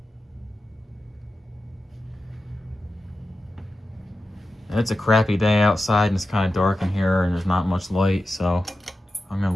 And it's a crappy day outside and it's kind of dark in here and there's not much light, so I'm gonna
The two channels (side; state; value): both; normal; correlation 0.92